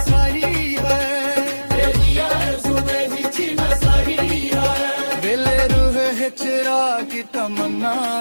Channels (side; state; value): both; inverted; correlation -1.00